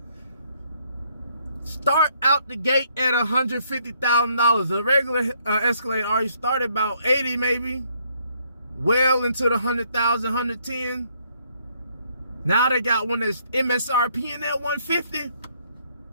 Start out the gate at $150,000. The regular Escalade already started about 80 maybe. Well into the 100,000, 110. Now they got one that's MSRP in that 150.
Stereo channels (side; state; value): both; inverted; correlation -0.69